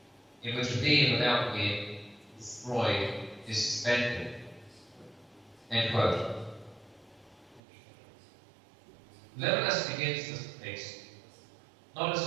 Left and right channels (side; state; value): left; drops out; at 7.6 s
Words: in which a being without being destroyed is suspended. End quote. Levinas begins this space not as